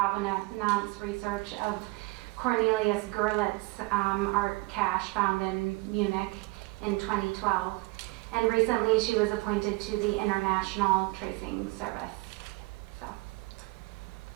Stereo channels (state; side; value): quieter; left; 23.6 dB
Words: research of Cornelius Gurlitt's art cache found in Munich in 2012. And recently she was appointed to the International Tracing Service. So,